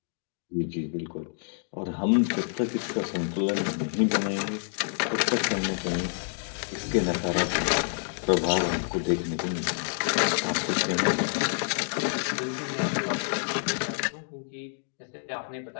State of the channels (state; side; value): silent; right; digital silence